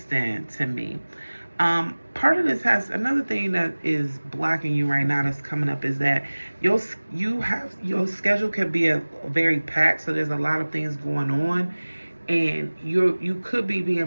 to me. Part of this has another thing that is blocking you right now that's coming up is that your schedule can be a very packed, so there's a lot of things going on, and you could be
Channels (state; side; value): inverted; both; correlation -1.00